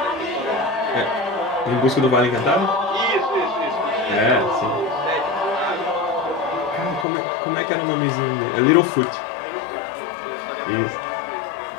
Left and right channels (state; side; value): drops out; right; at 7.1 s